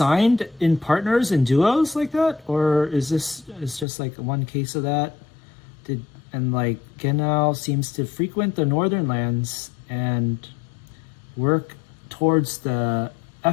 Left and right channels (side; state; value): right; drops out; at 3.9 s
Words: in partners and duos like that? Or is just like one case of that? And like Genau seems to frequent the northern lands and work towards the